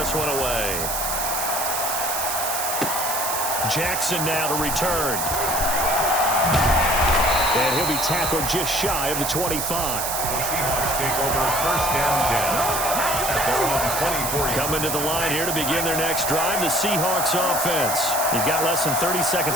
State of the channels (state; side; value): noise; right; hiss, 2 dB below the sound